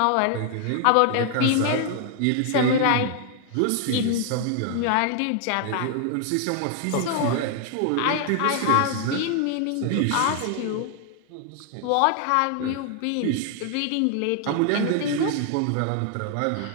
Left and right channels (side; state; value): both; different; correlation 0.00